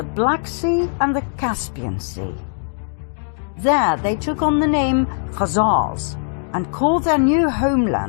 Black Sea and the Caspian Sea. There they took on the name Khazars and called their new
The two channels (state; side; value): silent; right; 64 dB below the other